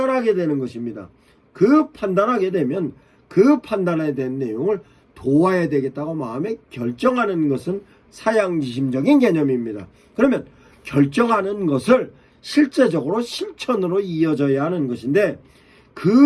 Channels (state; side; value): identical; both; correlation 1.00